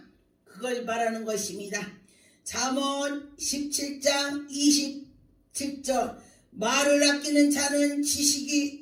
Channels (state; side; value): identical; both; correlation 1.00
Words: 그걸 말하는 것입니다. 잠언 17장 27절 말을 아끼는 자는